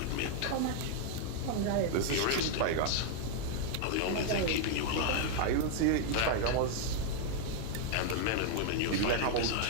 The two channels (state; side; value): different; both; correlation 0.00